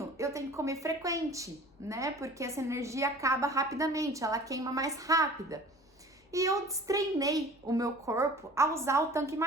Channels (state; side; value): normal; both; correlation 0.45